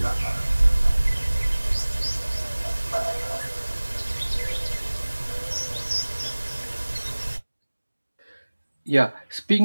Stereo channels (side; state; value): both; inverted; correlation -1.00